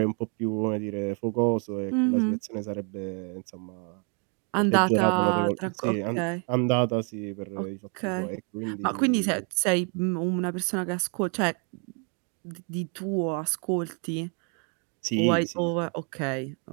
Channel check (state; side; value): quieter; left; 38.7 dB